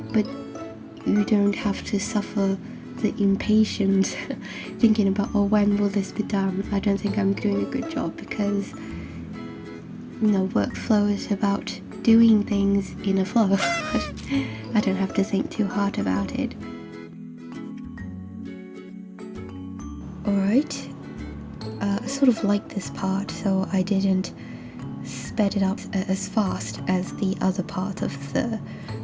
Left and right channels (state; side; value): identical; both; correlation 1.00